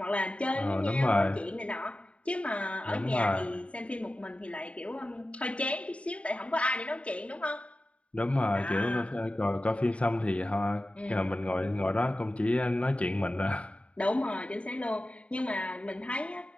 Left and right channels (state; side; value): late; right; 0.063 ms